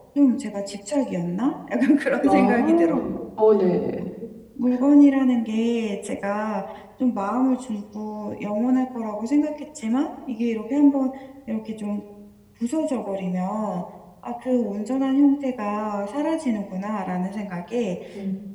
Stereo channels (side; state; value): both; identical; correlation 1.00